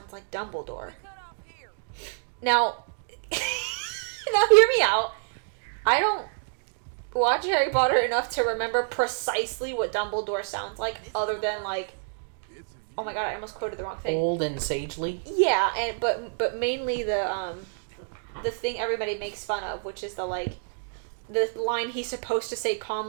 like Dumbledore. Now, now hear me out. I don't watch Harry Potter enough to remember precisely what Dumbledore sounds like, other than like oh my god, I almost quoted the wrong thing. Old and sagely. Yeah, and but mainly the thing everybody makes fun of, which is the line he's supposed to say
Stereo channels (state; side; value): silent; left; digital silence